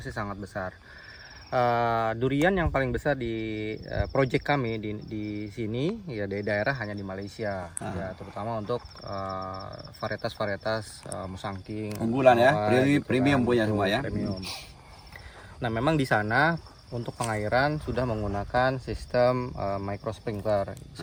sangat besar. Durian yang paling besar di project kami di sini ya di daerah hanya di Malaysia, ya terutama untuk varietas-varietas musangking Unggulan ya, gitu premium kan, punya betul, semua ya. premium. Nah, memang di sana untuk pengairan sudah menggunakan sistem micro sprinkler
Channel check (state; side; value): identical; both; correlation 1.00